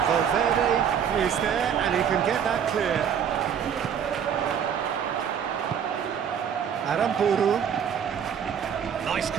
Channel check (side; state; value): left; quieter; 8.1 dB